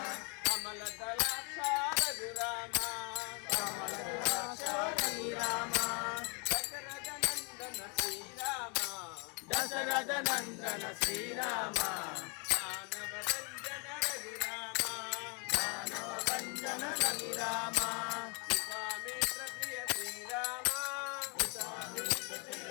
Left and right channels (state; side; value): quieter; right; 34.7 dB